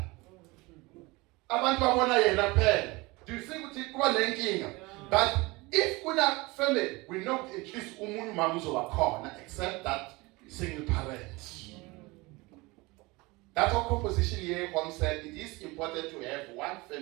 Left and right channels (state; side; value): quieter; left; 23.5 dB